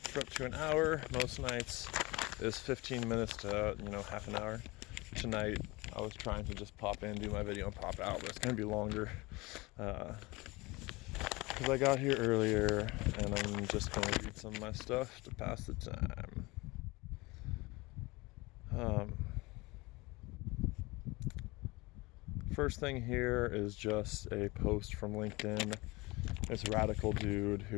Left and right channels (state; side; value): quieter; right; 23.1 dB